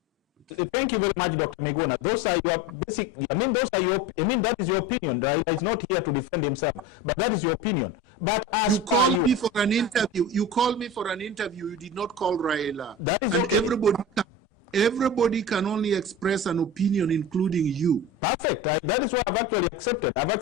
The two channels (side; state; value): both; normal; correlation 0.31